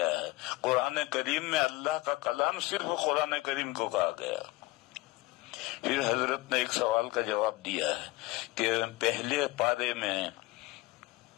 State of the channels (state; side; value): quieter; right; 21.1 dB